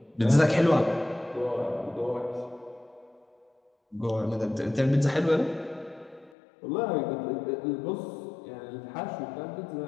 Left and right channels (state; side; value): drops out; right; at 6.3 s